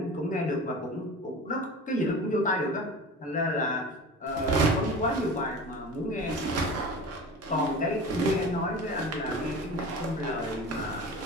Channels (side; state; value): both; normal; correlation 0.34